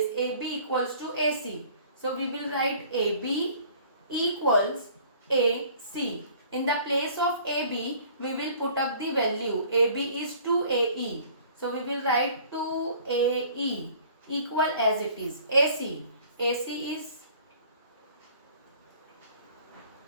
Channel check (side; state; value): both; inverted; correlation -0.52